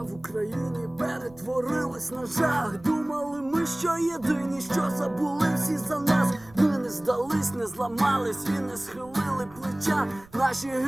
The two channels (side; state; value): right; noise; rumble, 24 dB below the sound